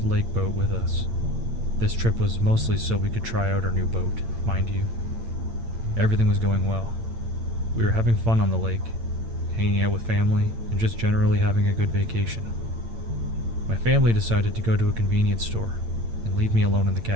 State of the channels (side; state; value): left; late; 8.8 ms